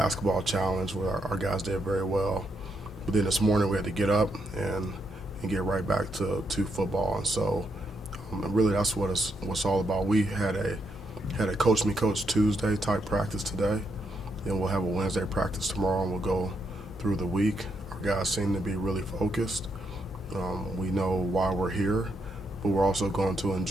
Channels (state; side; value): normal; both; correlation 0.79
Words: challenge where our guys did very well. But then this morning we had to get up and get right back to football. And so really that's what it's all about. We had a Coach Me Coach Tuesday type practice today. Then we'll have a Wednesday practice tomorrow, and we'll go through the week. Our guys seem to be really focused. We know why we're here, but we're also going to